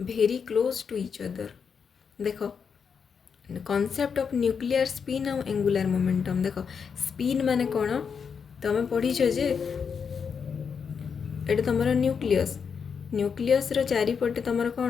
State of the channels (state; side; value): quieter; right; 6.3 dB